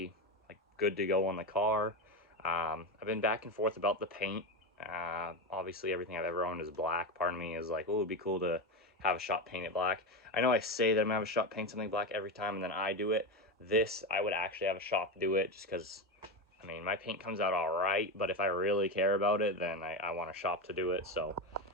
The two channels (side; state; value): both; normal; correlation 0.16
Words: like good to go on the car. I've been back and forth about the paint. Obviously everything I've ever owned is black. Part of me is like, oh, it'd be cool to have a shop paint it black. I know I say that I'm gonna have a shop paint something black every time and then I do it. This, I would actually have a shop do it just because, I mean, my paint comes out all right, but if I really care about it, then I want a shop to do it, so.